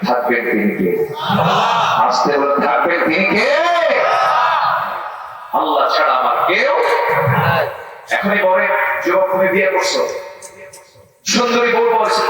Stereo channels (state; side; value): identical; both; correlation 1.00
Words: থাকবেন তিনি কে? আসতে বলে থাকবেন তিনি কে? আল্লাহ ছাড়া আমার কেউ। এখনই বলে যুবক তুমি বিয়ে করছো, সুন্দরী বউ